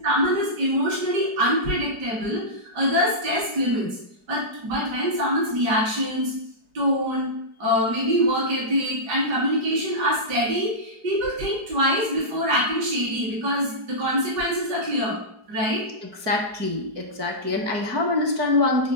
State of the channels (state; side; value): late; left; 4.7 ms